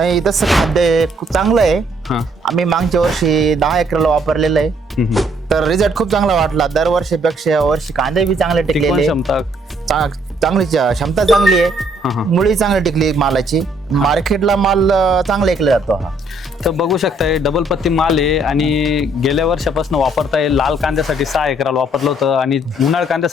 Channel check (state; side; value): normal; both; correlation 0.66